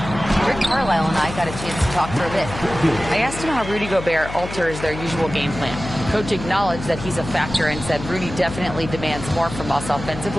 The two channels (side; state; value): left; noise; hum, 10 dB below the sound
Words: Rick Carlisle and I got a chance to talk for a bit. I asked him how Rudy Gobert alters their usual game plan. Coach acknowledged that he's a factor and said Rudy definitely demands more from us